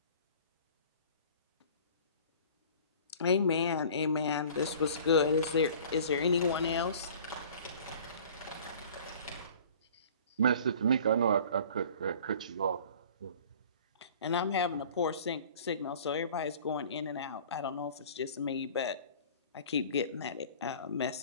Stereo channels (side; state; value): both; inverted; correlation -0.46